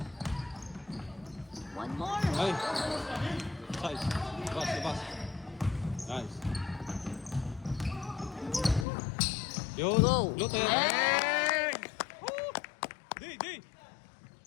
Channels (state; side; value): drops out; right; at 8.8 s